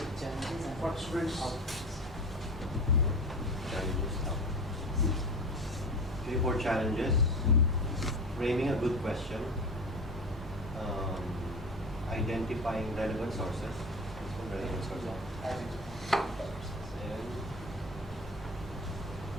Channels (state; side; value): normal; both; correlation 0.30